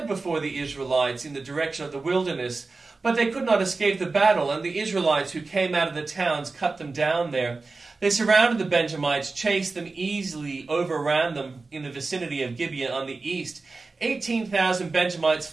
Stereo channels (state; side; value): quieter; left; 3.8 dB